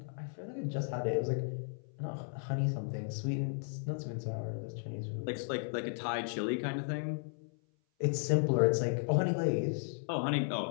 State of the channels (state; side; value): silent; right; 54 dB below the other